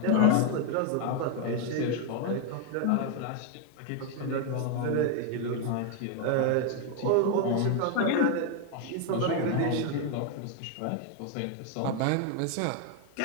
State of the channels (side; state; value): both; different; correlation 0.01